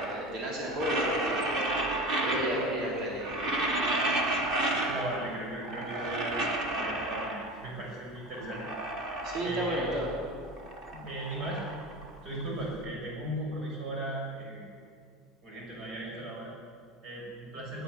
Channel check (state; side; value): normal; both; correlation 0.30